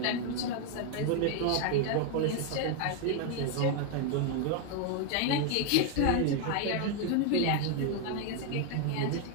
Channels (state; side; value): different; both; correlation 0.01